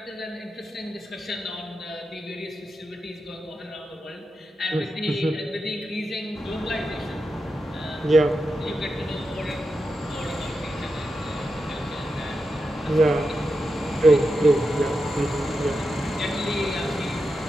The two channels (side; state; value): both; normal; correlation 0.88